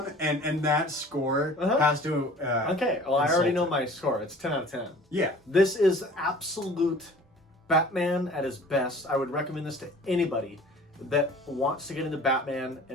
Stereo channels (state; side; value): normal; both; correlation 0.47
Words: and that score has to... okay, well, I already know my score. It's 10 out of 10. Yeah. This is absolute Batman at his best. I would recommend this to anybody that wants to get into Batman